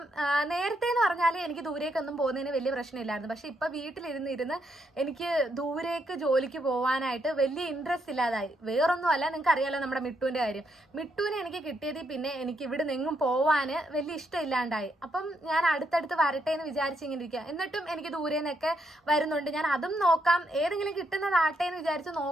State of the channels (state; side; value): normal; both; correlation 0.77